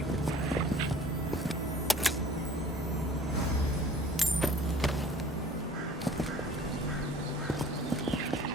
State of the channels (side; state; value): both; normal; correlation 0.50